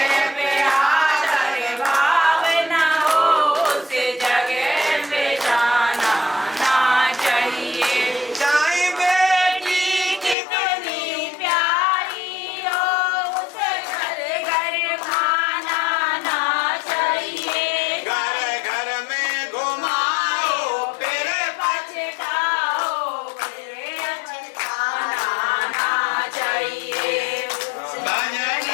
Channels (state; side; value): drops out; right; at 10.4 s